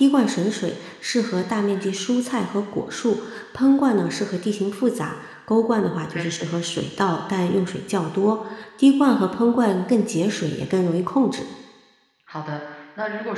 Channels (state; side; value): identical; both; correlation 1.00